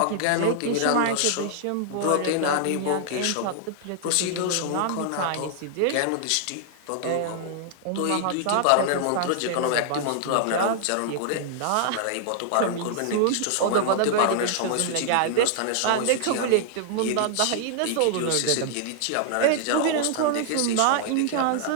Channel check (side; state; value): both; different; correlation -0.01